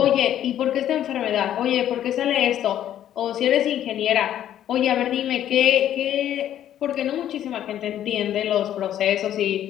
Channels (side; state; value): right; quieter; 11.3 dB